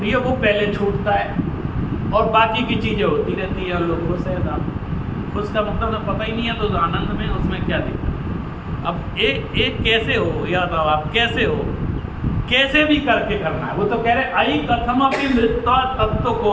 है वो पहले छूटता है और बाकी की चीज़ें होती रहती है और लोग खुश है। खुश का मतलब ना पता ही नहीं है, तो आनंद में उसमें क्या दिक्कत। अब एक कैसे हो, या तो आप कैसे हो, कैसे भी करके करना है। वो तो कह रहे आई कथमपि मृत्वा तत्व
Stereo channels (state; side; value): identical; both; correlation 1.00